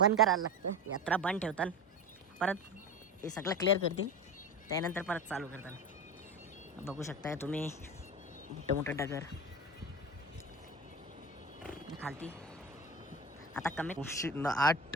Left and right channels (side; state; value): both; normal; correlation 0.26